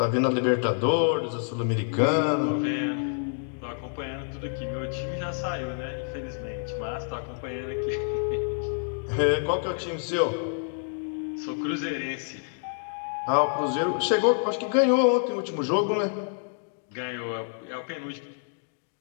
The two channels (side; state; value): right; silent; digital silence